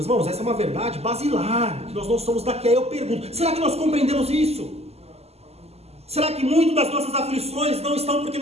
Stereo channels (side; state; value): left; late; 0.30 ms